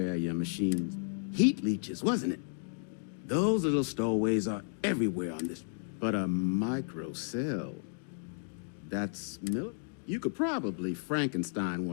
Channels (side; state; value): right; silent; digital silence